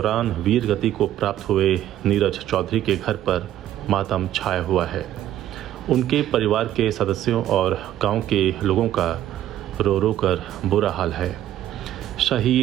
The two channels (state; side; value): quieter; left; 12.5 dB